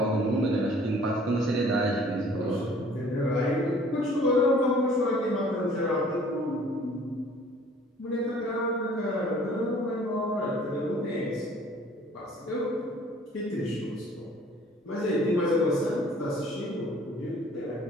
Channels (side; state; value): both; normal; correlation 0.53